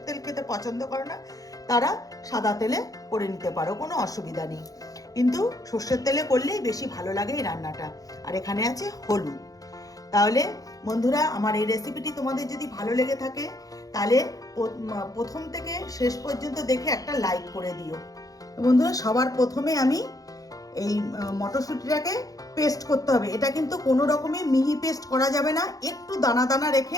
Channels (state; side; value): late; right; 0.17 ms